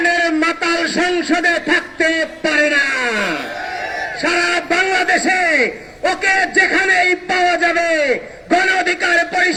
মাতাল সংসদে থাকতে পারে না। সারা বাংলাদেশে ওকে যেখানেই পাওয়া যাবে, গণ অধিকার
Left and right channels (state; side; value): identical; both; correlation 1.00